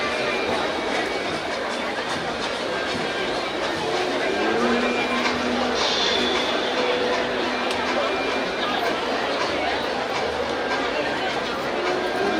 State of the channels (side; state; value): both; identical; correlation 1.00